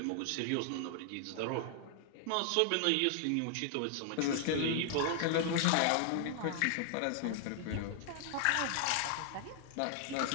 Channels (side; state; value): both; different; correlation 0.00